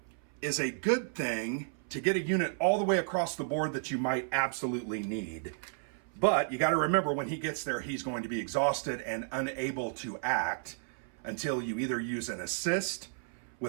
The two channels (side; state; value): left; silent; 56 dB below the other